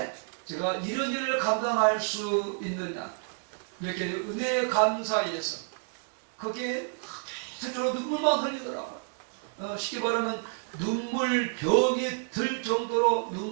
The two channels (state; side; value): silent; left; 56 dB below the other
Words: 제가 이런 일을 감당할 수 있느냐. 이렇게 은혜의 감사에서. 그게 스스로 눈물만 흘리더라고요. 쉽게 말하면 눈물병이 들 정도로